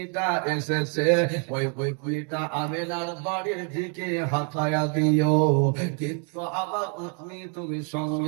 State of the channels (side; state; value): left; quieter; 39.5 dB